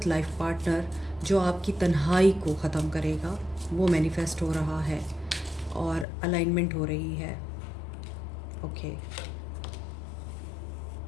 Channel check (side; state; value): right; drops out; at 6.1 s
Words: लाइफ पार्टनर जो आपकी तन्हाई को ख़त्म करेगा वो मैनिफेस्ट हो रहा है और अलाइनमेंट हो रही है। Okay,